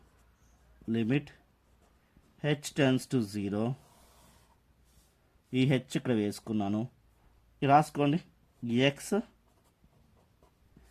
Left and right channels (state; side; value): identical; both; correlation 1.00